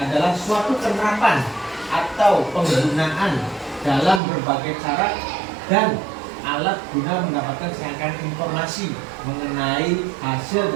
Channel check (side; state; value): left; drops out; at 4.2 s